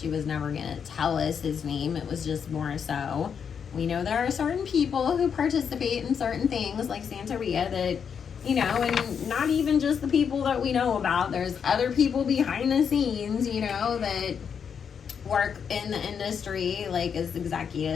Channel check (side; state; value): right; quieter; 7.1 dB